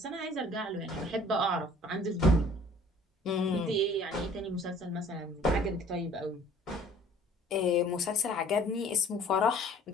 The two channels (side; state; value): both; normal; correlation 0.52